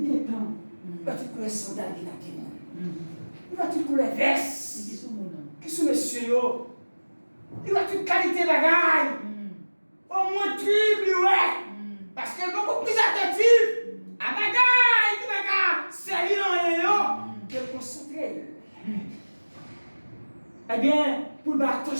est temps. Il va tout les sandales qui t'attendent. Il va tout les vestes. Qui sont messieurs? Il va toute qualité de bagaille. Au moins triple, ouais. Parce que beaucoup plus attentif à bagaille, c'est lui que le concentré. Eh bien, pour faire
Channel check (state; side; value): inverted; both; correlation -1.00